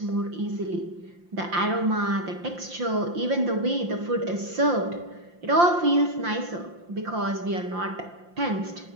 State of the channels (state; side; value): late; left; 5.7 ms